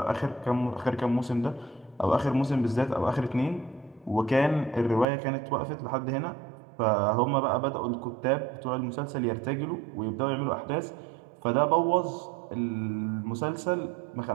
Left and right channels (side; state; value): left; drops out; at 5.1 s